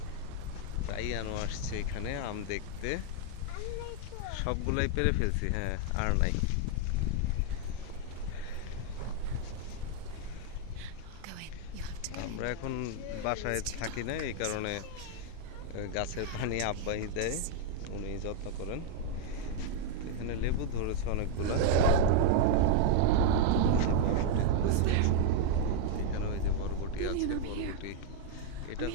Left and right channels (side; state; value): both; different; correlation 0.00